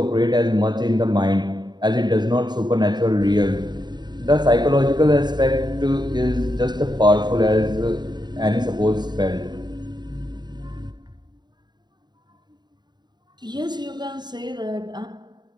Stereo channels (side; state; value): left; late; 0.21 ms